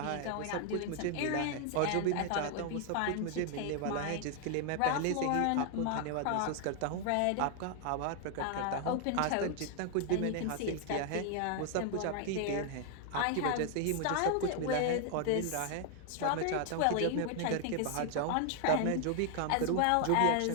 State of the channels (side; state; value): both; different; correlation 0.00